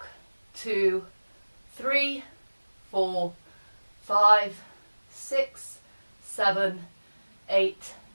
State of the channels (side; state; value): both; inverted; correlation -1.00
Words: 2, 3, 4, 5, 6, 7, 8,